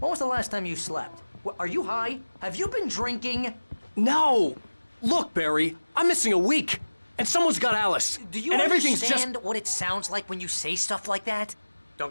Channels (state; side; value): inverted; both; correlation -1.00